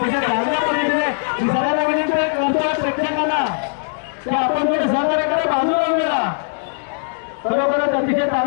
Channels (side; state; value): right; silent; 66 dB below the other